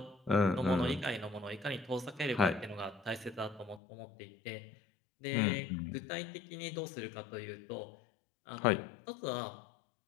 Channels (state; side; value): drops out; right; at 3.8 s